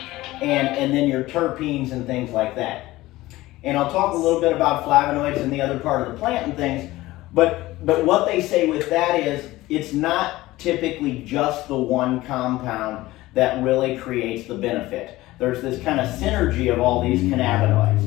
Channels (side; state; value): right; quieter; 17.9 dB